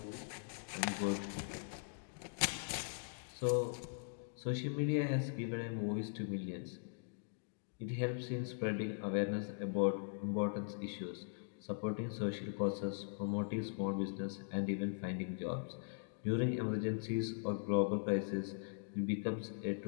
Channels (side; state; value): right; silent; digital silence